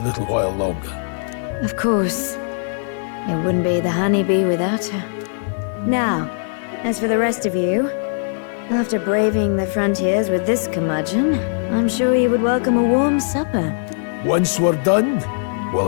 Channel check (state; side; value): silent; right; 64 dB below the other